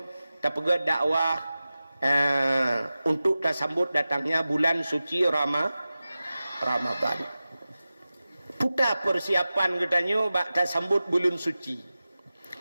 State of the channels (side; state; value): both; inverted; correlation -0.95